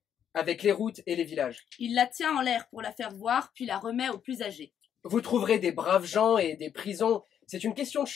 avec les routes et les villages. Il la tient en l'air pour la faire voir, puis la remet aux plus âgés. Vous trouverez des braves gens et des prisons. C'est une question de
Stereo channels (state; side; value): quieter; right; 8.9 dB